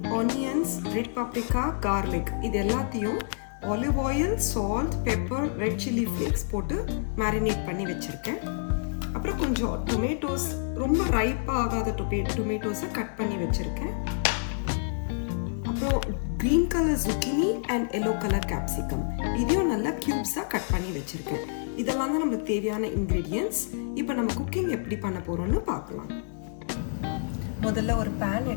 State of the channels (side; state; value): right; silent; digital silence